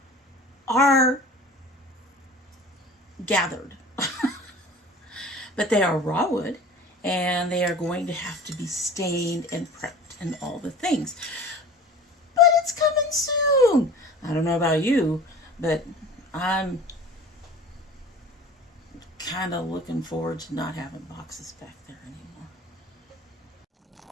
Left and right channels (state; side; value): normal; both; correlation 0.41